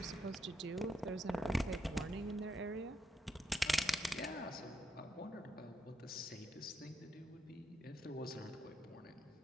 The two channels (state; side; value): normal; both; correlation 0.81